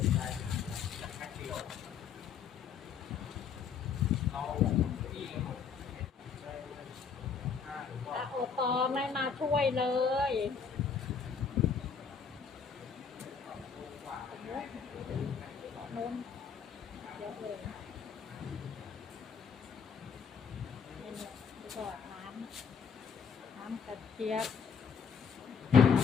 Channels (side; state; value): right; quieter; 6.4 dB